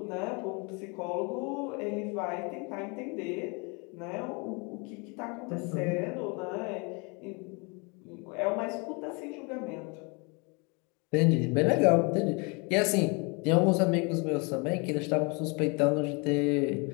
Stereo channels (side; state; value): right; quieter; 31.2 dB